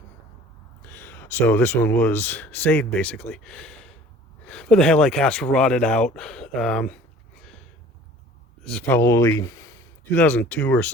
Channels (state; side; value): normal; both; correlation 0.48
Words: So this one was saved, basically. But the headlight caps were rotted out. This is probably 2002 or